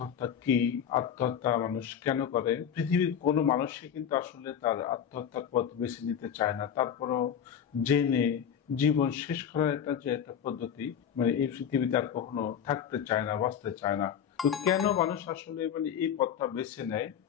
কি, আত্মহত্যা মানুষ কেন করে? পৃথিবীর কোনো মানুষই কিন্তু আসলে তার আত্মহত্যার পথ বেছে নিতে চায় না, তারপরও জেনে জীবন শেষ করার একটা পদ্ধতি এই পৃথিবীতে আর কখনো থাকতে চায় না, বাঁচতে চায় না। তো কেন মানুষ আসলে এই পথটা বেছে নেয়?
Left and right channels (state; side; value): quieter; right; 8.5 dB